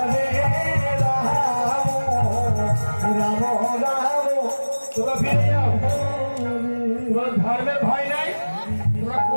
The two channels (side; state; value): both; inverted; correlation -1.00